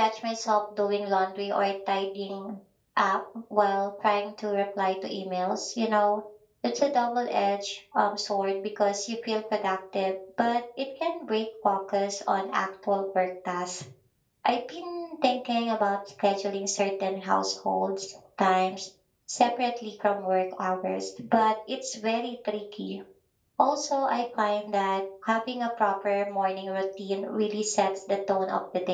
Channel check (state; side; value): identical; both; correlation 1.00